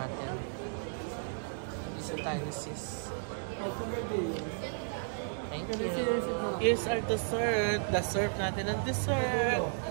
Isa tayo ni Sis. Thank you. Here's our dessert. The-serve natin ang dessert.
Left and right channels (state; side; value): silent; left; digital silence